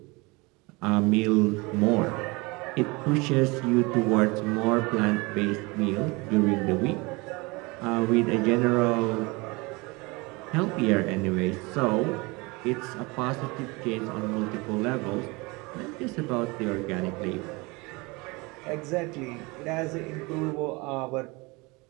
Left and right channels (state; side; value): quieter; left; 25.7 dB